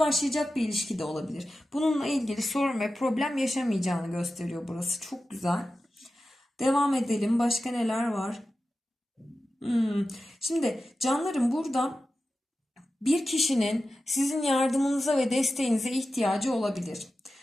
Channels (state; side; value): normal; both; correlation 0.93